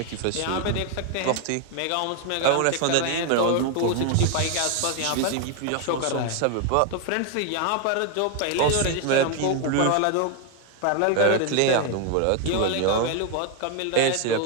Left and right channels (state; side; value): different; both; correlation 0.01